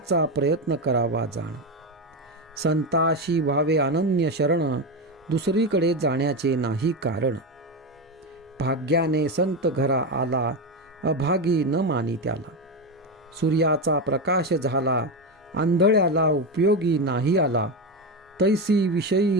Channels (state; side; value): normal; both; correlation 0.14